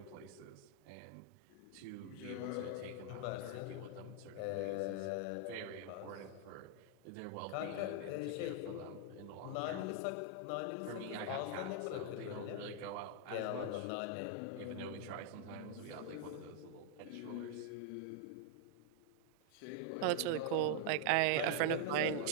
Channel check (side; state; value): both; different; correlation 0.00